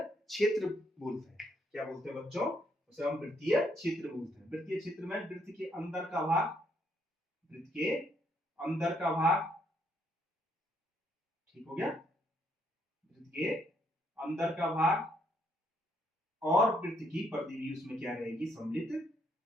क्षेत्र बोलते हैं। क्या बोलते हैं बच्चों? उसे हम वृत्तीय क्षेत्र बोलते हैं। वृत्तीय क्षेत्र में वृत्त के अंदर का भाग, वृत्त के अंदर का भाग, ठीक हो गया? वृत्त के अंदर का भाग और वृत्त की परिधि भी उसमें क्या रहेगी? सम्मिलित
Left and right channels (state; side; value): normal; both; correlation 0.72